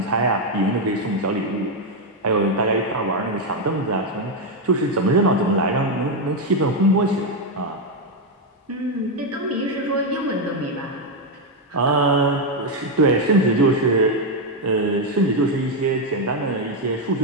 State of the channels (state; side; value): normal; both; correlation 0.04